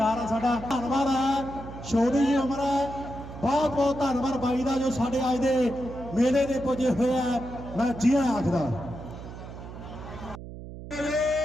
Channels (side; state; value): right; noise; hum, 12 dB below the sound